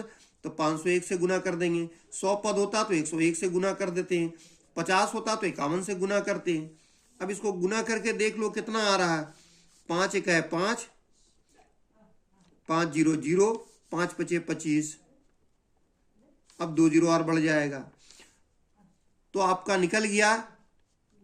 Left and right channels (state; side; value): identical; both; correlation 1.00